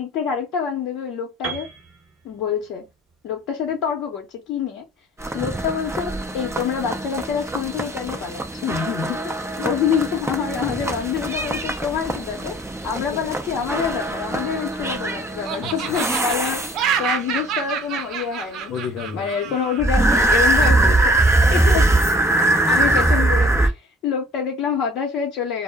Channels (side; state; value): both; normal; correlation 0.52